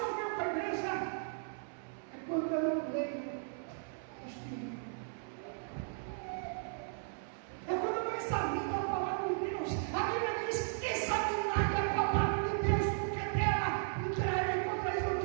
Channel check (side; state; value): left; silent; 54 dB below the other